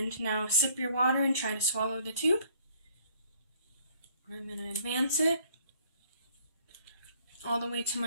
now sip your water and try to swallow the tube. I'm going to advance it all the way to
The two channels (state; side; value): inverted; both; correlation -0.60